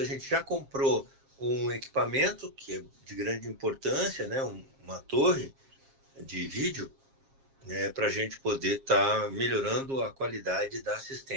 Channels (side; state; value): left; late; 7.4 ms